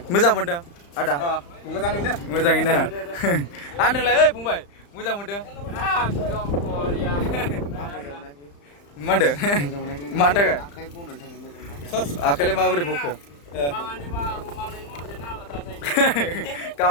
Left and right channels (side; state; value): right; late; 35 ms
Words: मोजां मोनदों आदा मोजाङैनो आरो नोंलाय ओइ फंबाय मोजां मोनदों मा होनदों मानि थाखाय आखाइलाय माबोरै बखो